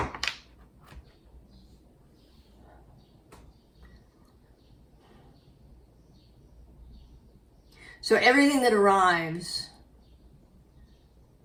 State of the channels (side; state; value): both; identical; correlation 1.00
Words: everything that arrives